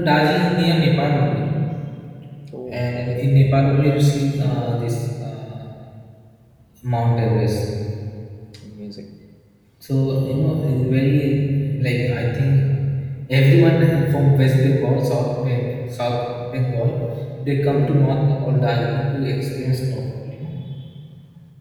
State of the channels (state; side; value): identical; both; correlation 1.00